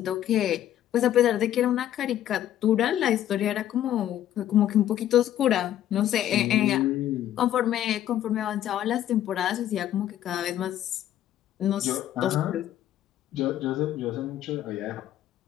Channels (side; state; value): right; quieter; 11.9 dB